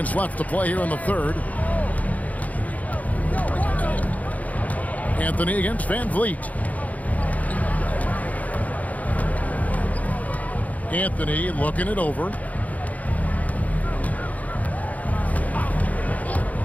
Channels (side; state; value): right; late; 0.074 ms